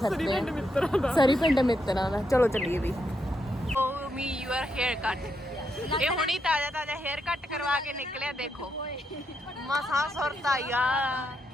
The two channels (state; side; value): normal; both; correlation 0.81